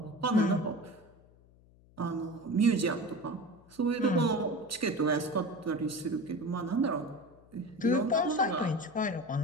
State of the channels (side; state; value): left; noise; hum, 27 dB below the sound